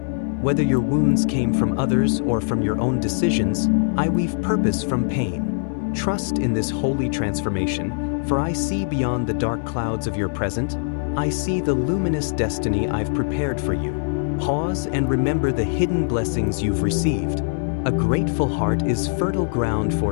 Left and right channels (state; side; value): silent; right; 64 dB below the other